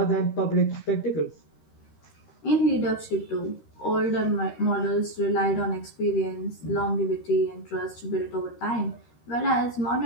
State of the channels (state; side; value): late; right; 13 ms